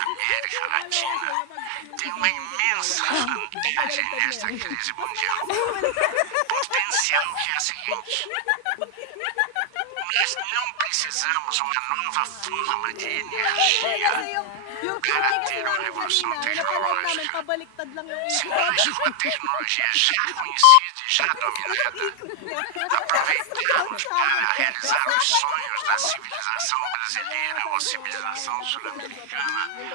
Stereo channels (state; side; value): different; both; correlation 0.00